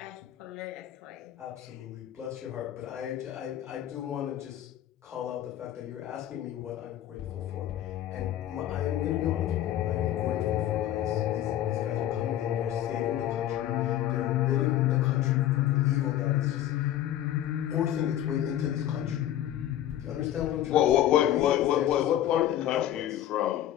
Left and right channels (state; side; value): quieter; right; 12.1 dB